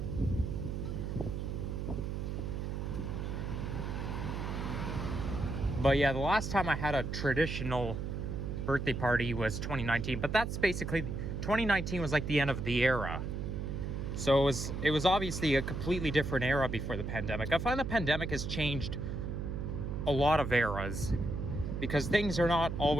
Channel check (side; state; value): right; noise; hum, 3 dB below the sound